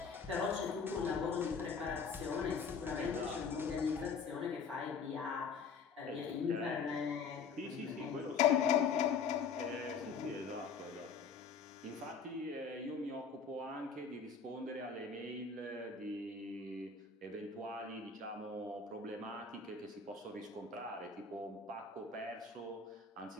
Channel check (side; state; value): right; quieter; 5.6 dB